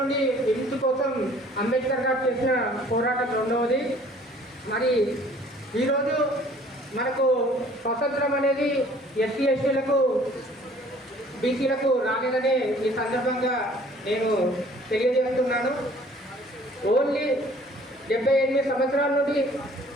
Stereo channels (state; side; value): normal; both; correlation 0.54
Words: విముక్తి కోసం అంబేద్కర్ గారు చేసిన పోరాటం రెండవది. మరి ఈరోజు మనకు స్వతంత్రం అనేది ఎస్సీ ఎస్టీలకు బీసీలకు రాలేదనే ఈ సందర్భంగా నేను తెలియజేస్తున్నాను. ఓన్లీ 78 సంవత్సరాల నుండి